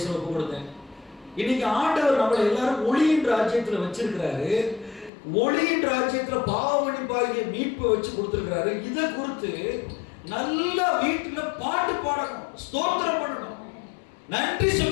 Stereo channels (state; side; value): drops out; right; at 5.1 s